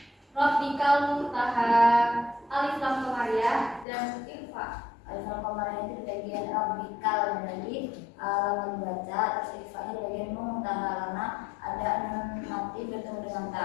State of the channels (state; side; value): drops out; right; at 3.9 s